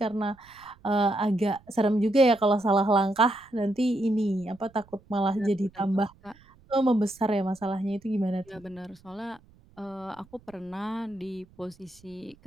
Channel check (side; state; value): right; noise; rumble, 28 dB below the sound